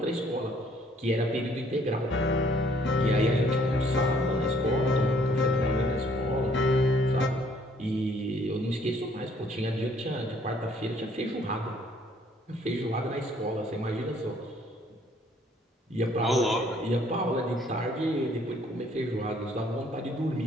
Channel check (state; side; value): normal; both; correlation 0.62